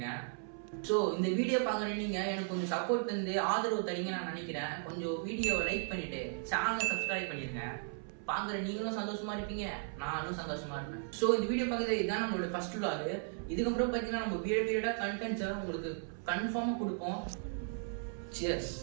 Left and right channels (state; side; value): silent; left; 54 dB below the other